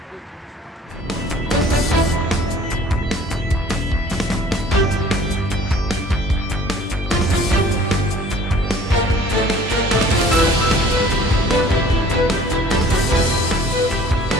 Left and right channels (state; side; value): normal; both; correlation 0.52